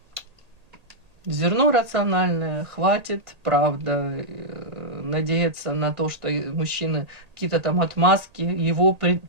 зерно рациональное, хватит, правда, надеяться на то, что мужчины какие-то там отмазки, его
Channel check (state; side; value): late; left; 1.8 ms